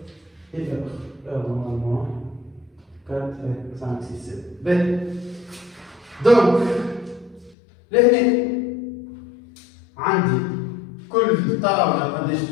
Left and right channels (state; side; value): drops out; right; at 7.6 s